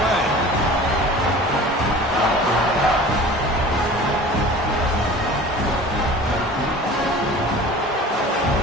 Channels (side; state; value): both; normal; correlation 0.41